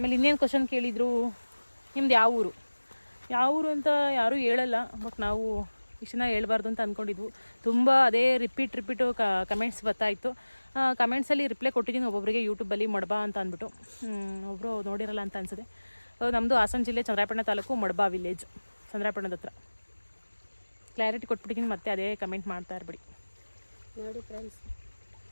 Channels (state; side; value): inverted; both; correlation -1.00